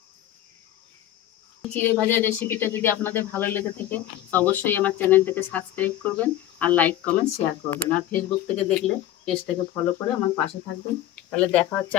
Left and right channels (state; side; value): quieter; right; 12.8 dB